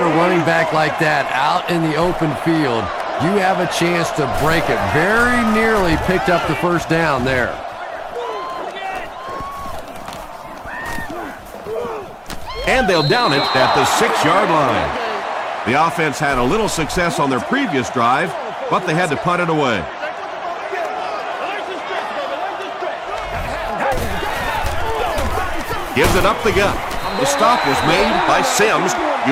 a running back like that out in the open field, you have a chance to break it. Very nearly picked up the first down there. And they'll down it at the 6-yard line. The offense had a little success on their previous drive, but they had to punt it away. Gives it up the gut. The stop was made by Sims.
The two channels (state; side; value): identical; both; correlation 1.00